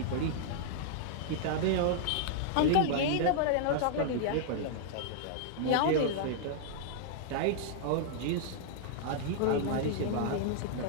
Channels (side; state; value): both; different; correlation -0.01